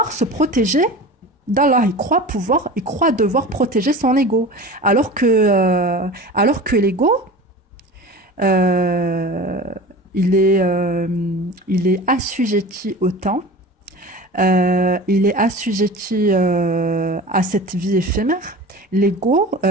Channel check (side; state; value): both; normal; correlation 0.35